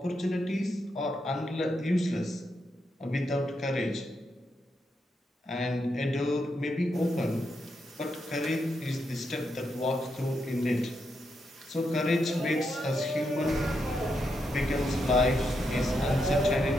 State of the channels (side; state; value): both; normal; correlation 0.82